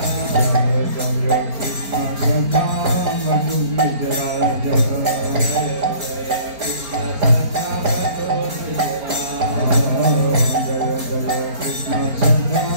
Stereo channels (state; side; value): late; left; 4.4 ms